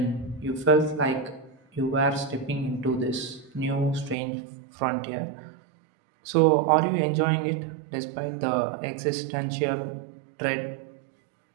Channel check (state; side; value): drops out; left; at 4.2 s